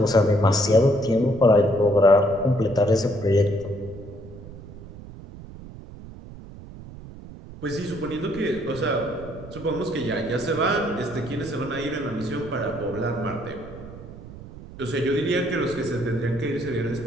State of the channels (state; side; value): noise; right; rumble, 15 dB below the sound